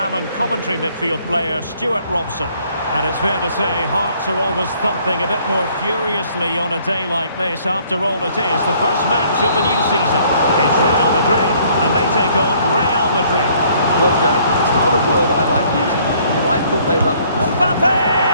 and Coventry midfield player, Stuart Robson. And it's fair to say, hearts are always thumping a bit more furiously on a day like this. After all, it is the first match of the new season. It's Real Madrid, and they take on Real Madrid. Well, Derek, it's not a word I like using, but I thought they were... Mbappe!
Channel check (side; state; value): both; inverted; correlation -0.61